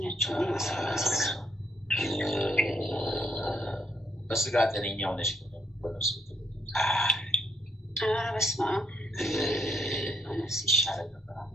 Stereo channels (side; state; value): both; normal; correlation 0.73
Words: በስጋ ጤነኛ ሆነሽ በነፍስ በስመ አብ በነፍስ ይሻላል ነበር።